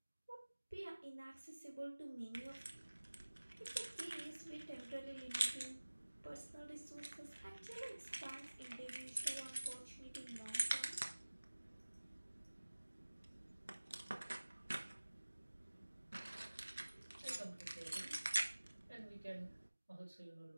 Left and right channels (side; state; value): both; inverted; correlation -1.00